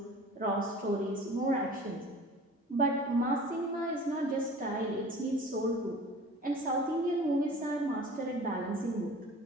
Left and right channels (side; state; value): both; normal; correlation 0.43